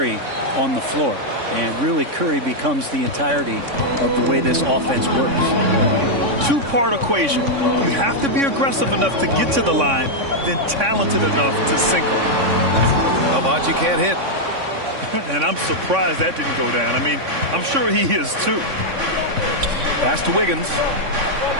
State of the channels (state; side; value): late; left; 3.6 ms